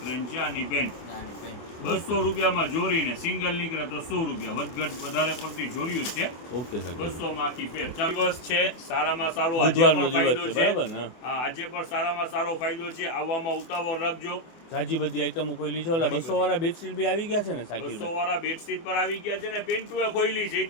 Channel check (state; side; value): late; right; 24 ms